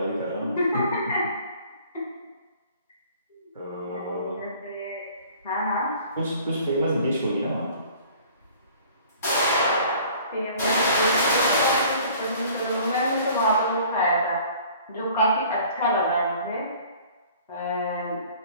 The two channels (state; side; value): inverted; both; correlation -0.51